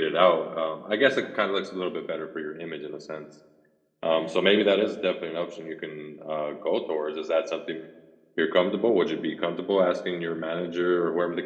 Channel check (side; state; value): both; identical; correlation 1.00